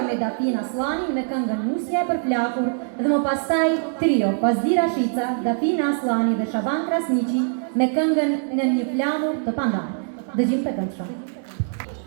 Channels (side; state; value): left; silent; digital silence